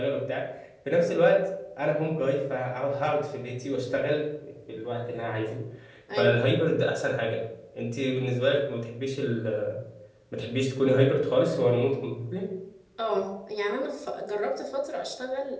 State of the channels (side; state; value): both; identical; correlation 1.00